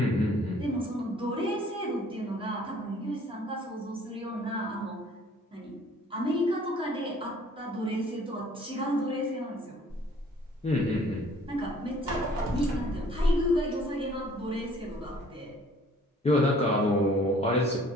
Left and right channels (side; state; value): both; normal; correlation 0.56